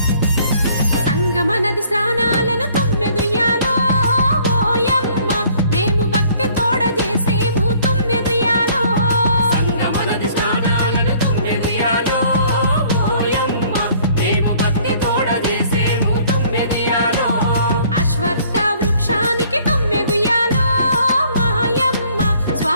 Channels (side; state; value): both; inverted; correlation -0.58